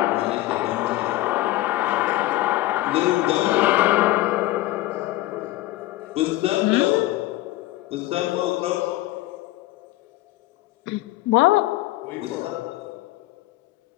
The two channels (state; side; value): quieter; right; 17.0 dB